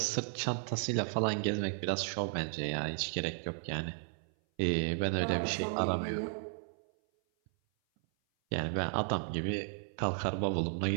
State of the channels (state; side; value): silent; left; 55 dB below the other